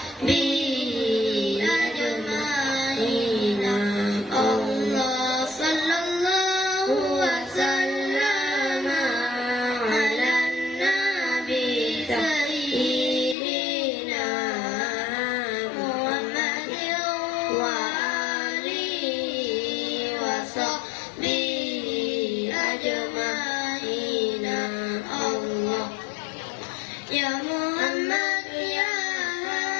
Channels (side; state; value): right; drops out; at 13.4 s